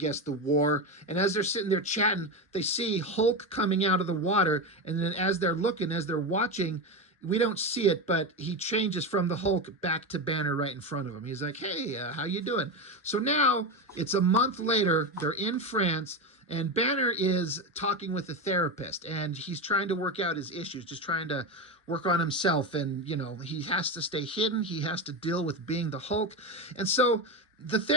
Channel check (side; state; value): both; normal; correlation 0.16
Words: the war. And as they're sitting there chatting, they see Hulk coming out of the water. And then as they're looking, as they're watching, we don't see it, but he changes from the Hulk back to Banner right in front of him. He's like, hey, how you doing? So now it's a month later. They're in France. And Banner is talking with a therapist, and he's trying to work out his issues, just trying to work on himself. And, you know, he has to stay hidden. He has to deal with being the Hulk. And so the